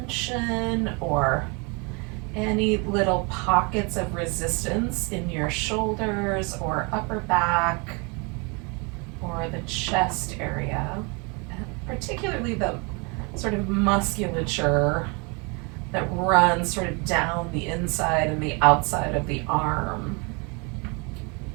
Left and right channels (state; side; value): quieter; left; 31.4 dB